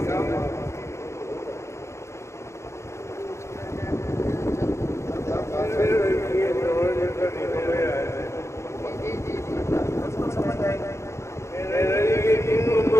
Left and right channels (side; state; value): right; late; 0.14 ms